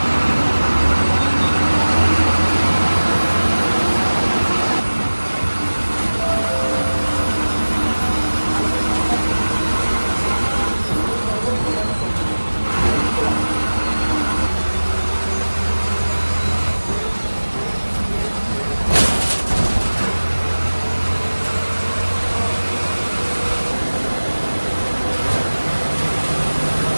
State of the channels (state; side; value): inverted; both; correlation -1.00